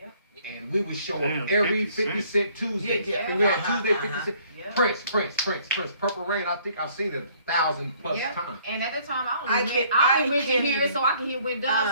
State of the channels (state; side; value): inverted; both; correlation -0.61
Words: And we would show Damn, up every 50 50 cent Tuesday. Yeah, yeah. And we had Uh-huh, Tuesday 50 cent. Yeah. Prince. Purple Rain, I think I've seen it 1,000 plus Yep. times. And at the time, I I only can't- went, I I only went to can't hear it even- so I can hear when